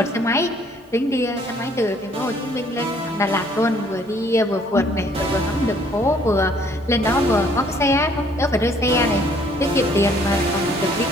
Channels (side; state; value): both; normal; correlation 0.61